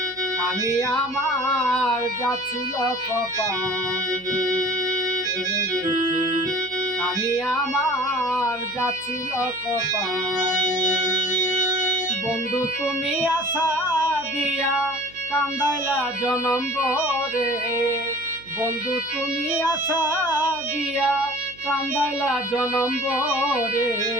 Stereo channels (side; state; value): right; noise; hum, 24 dB below the sound